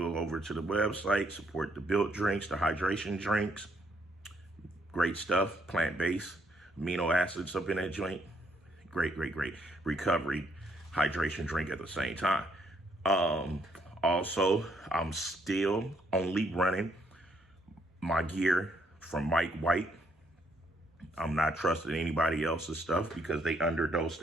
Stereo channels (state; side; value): normal; both; correlation 0.71